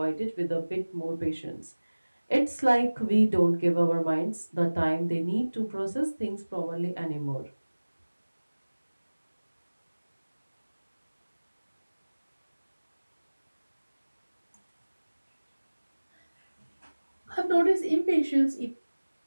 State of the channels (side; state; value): both; inverted; correlation -1.00